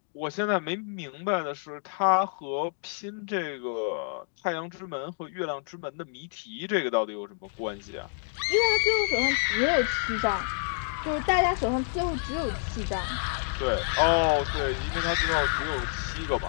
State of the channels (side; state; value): right; silent; 59 dB below the other